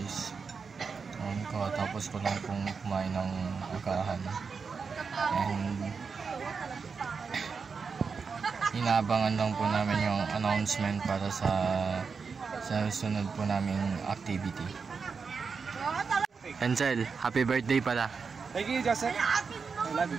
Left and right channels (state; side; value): quieter; left; 5.3 dB